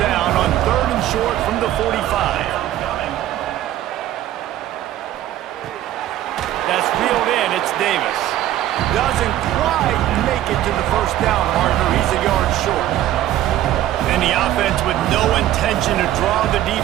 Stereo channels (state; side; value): quieter; left; 13.2 dB